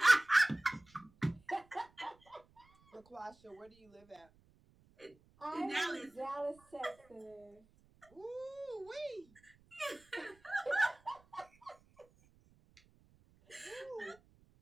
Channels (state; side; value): noise; right; rumble, 30 dB below the sound